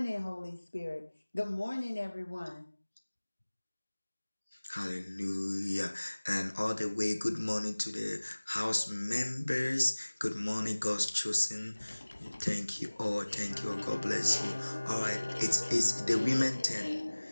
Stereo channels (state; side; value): inverted; both; correlation -1.00